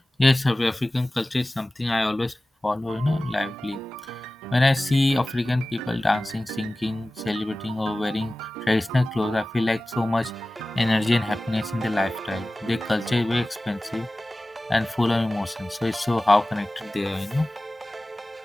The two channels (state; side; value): normal; both; correlation 0.97